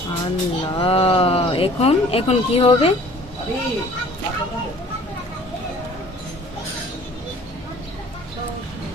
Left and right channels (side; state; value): both; normal; correlation 0.50